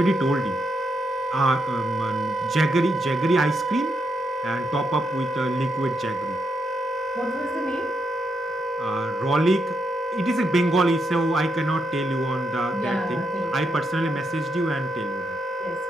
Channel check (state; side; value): normal; both; correlation 0.81